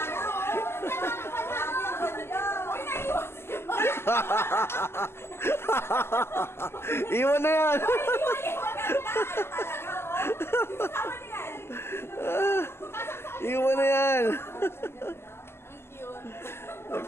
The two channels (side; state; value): right; late; 0.12 ms